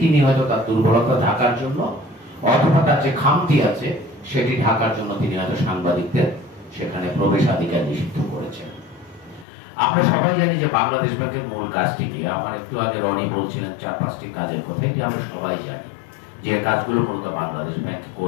তিনি হয়তো তার দুর্বলতা ঢাকার জন্য, অথবা তার যে খামতি আছে সেটি ঢাকার জন্য তিনি হয়তো সাংবাদিকদের সেখানে প্রবেশাধিকার নিষিদ্ধ করেছেন। আমরা সবাই জানি যে বাংলাদেশ ব্যাংকের মূল কাজটি কি। আমার একটু আগে রনি বলছিলেন 4-5টি কাজের কথা, এটি আমরা সবাই জানি যে কাজগুলো মূলত বাংলাদেশ ব্যাংক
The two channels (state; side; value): drops out; right; at 9.5 s